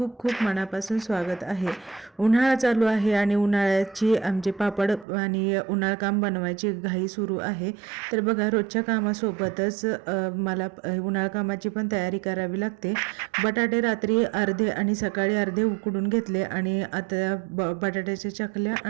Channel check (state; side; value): drops out; left; at 5.1 s